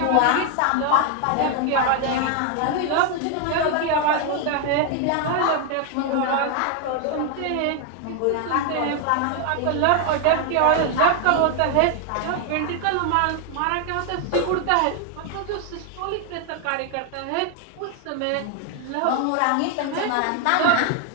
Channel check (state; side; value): different; both; correlation 0.00